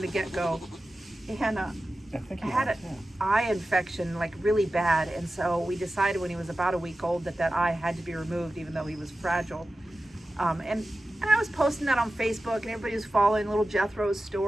the get-go, and I think he had was, an eye infection, like really bad, and so we decided when he was about a week old that eye had to be removed, even though he was fragile. And I was posting that on Facebook, and everybody was following little Jethro's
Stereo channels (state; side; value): normal; both; correlation 0.94